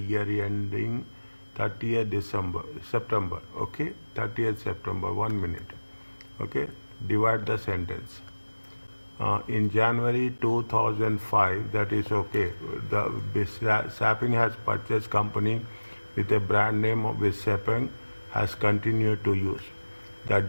ending 30th September. Okay, 30th September, 1 minute. Okay, divide the sentence. In January 2005, that is okay. The Saping has purchased company with a brand name with Sepang has continued to use. The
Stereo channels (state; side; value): inverted; both; correlation -1.00